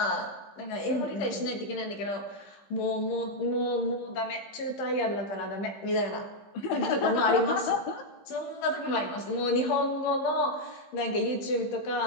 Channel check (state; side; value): late; right; 15 ms